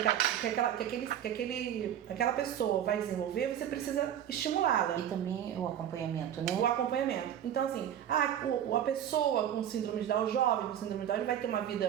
aquela pessoa vai desenvolver, você precisa estimulá-la. E também o acompanhamento, né? O acompanhamento. Então, assim, a pessoa com síndrome de Down, o jovem com síndrome de Down, ele vai ter uma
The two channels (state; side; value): quieter; left; 10.2 dB